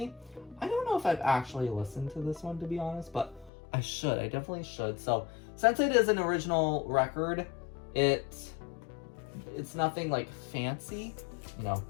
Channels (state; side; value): drops out; right; at 3.5 s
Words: I don't know if I've actually listened to this one, to be honest, but I should. I definitely should. So since it is an original record, it's nothing like fancy. You know,